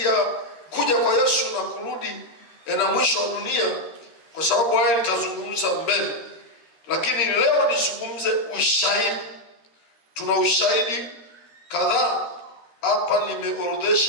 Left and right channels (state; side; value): late; right; 13 ms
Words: ya kuja kwa Yesu na kurudi na mwisho wa dunia, kwa sababu haya nitazungumza mbele. Lakini leo nizungumze ushahidi. Tuna ushahidi kadhaa hapa,